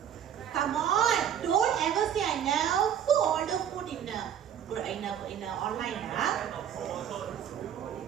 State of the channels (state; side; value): quieter; left; 9.4 dB